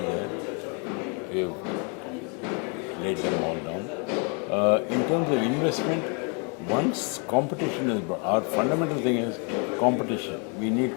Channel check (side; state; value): right; quieter; 36.6 dB